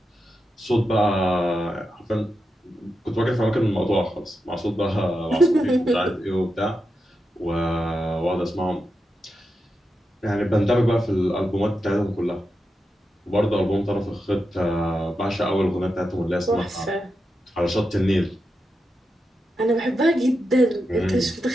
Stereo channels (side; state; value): both; normal; correlation 0.88